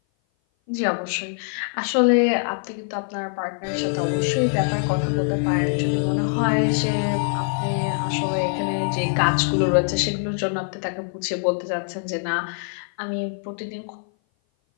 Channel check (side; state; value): right; silent; 57 dB below the other